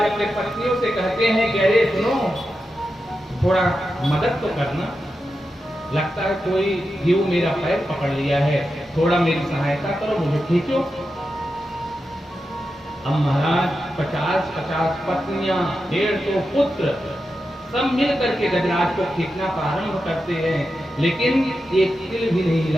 अपने पत्नियों से कहते हैं कि अरे सुनो, थोड़ा मदद तो करना, लगता है कोई जीव मेरा पैर पकड़ लिया है, थोड़ा मेरी सहायता करो, मुझे खींचो। अब महाराज 50-50 पत्नियां, 150 पुत्र सब मिल करके गजराज को खींचना प्रारंभ करते हैं, लेकिन एक तिल भी नहीं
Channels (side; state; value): both; normal; correlation 0.89